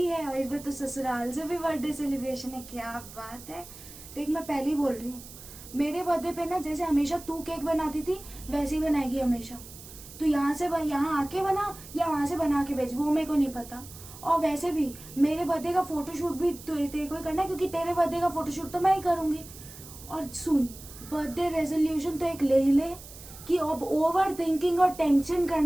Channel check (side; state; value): right; noise; hiss, 16 dB below the sound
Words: है, और इस बार तो ससुराल से भी बर्थडे सेलिब्रेशन है। क्या बात है। देख मैं पहले ही बोल रही हूँ, मेरे बर्थडे पे ना जैसे हमेशा तू केक बनाती थी वैसे ही बनाएगी हमेशा। तू यहाँ आके बना या वहाँ से बना के भेज, वो मेरे को नहीं पता। और वैसे भी मेरे बर्थडे का फोटोशूट भी तेरे को ही करना है, क्योंकि तेरे बर्थडे का फोटोशूट तो मैं ही करूँगी। और सुन, बर्थडे रेजोल्यूशन तो एक ले ही ले कि अब ओवर थिंकिंग और टेंशन